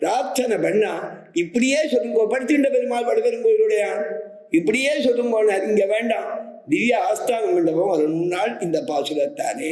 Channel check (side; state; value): both; identical; correlation 1.00